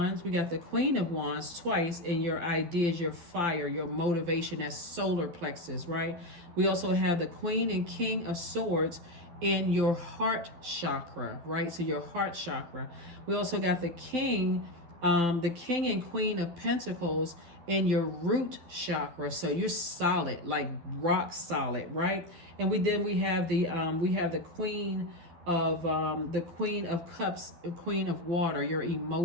we got the Queen of Wands twice in your ideas, your fire, your motivation, that solar plexus, right? We also have the Queen and King of Swords in your heart chakra, right? So your heart chakra. We also got the King and Queen of Pentacles in your root chakra. So you're solid, like rock solid, right? And we have the Queen of Cups, Queen of Water, your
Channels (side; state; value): left; late; 12 ms